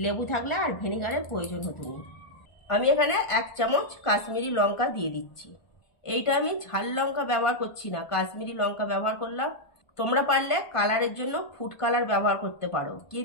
লেবু থাকলে আর ভিনিগারের প্রয়োজন হতো না। আমি এখানে 1 চামচ কাশ্মীরি লঙ্কা দিয়ে দিচ্ছি। এইটা আমি ঝাল লঙ্কা ব্যবহার করছি না, কাশ্মীরি লঙ্কা ব্যবহার করলাম। তোমরা পারলে কালারের জন্য ফুড কালার ব্যবহার করতে পারো,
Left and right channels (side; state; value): right; late; 1.5 ms